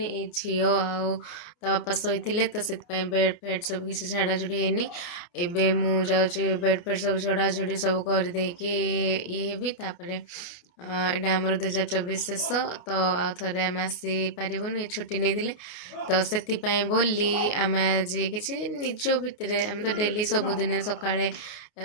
ये झील बापा शोते तो से बेड फेड सब किसी झाड़ाझुड़ी है एबे मु जाऊँ बेड फेड सब झड़ाझुड़ी सब करदे ये भी तापर एटा आमर 2024 शेष तो आउ थे आम आसी पारूँ ये छुट्टी नहीं तो से बोली आम आज कि निज भितर आम तो डेली सबुदिन सकाଳେ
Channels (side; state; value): right; late; 29 ms